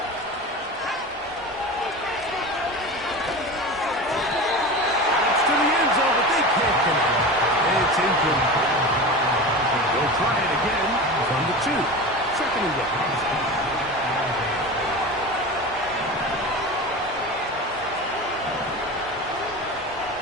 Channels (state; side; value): normal; both; correlation 0.29